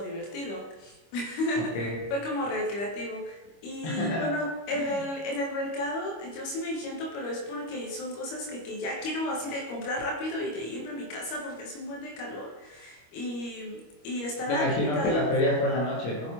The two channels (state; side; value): late; right; 25 ms